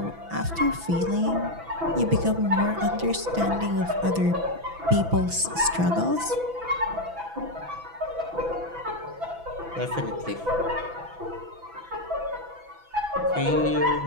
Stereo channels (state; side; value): late; left; 6.0 ms